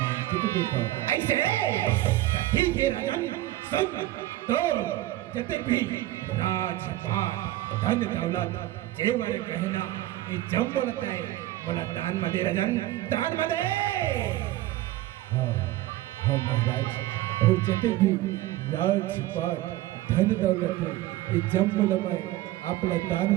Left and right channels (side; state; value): left; quieter; 15.8 dB